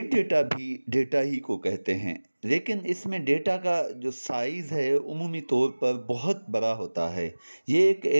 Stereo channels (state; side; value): inverted; both; correlation -1.00